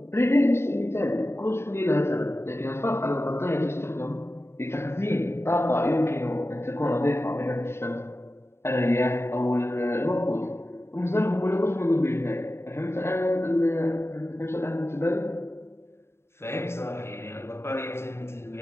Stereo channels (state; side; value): late; right; 0.12 ms